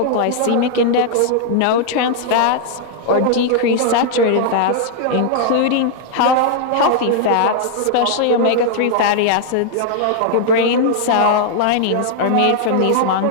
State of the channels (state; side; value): different; both; correlation -0.01